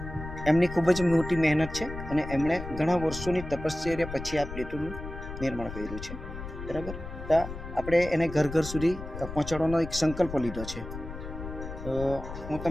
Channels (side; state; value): left; noise; rumble, 10 dB below the sound